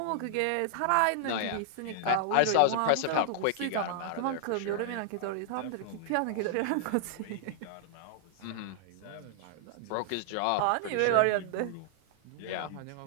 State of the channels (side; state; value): both; different; correlation -0.01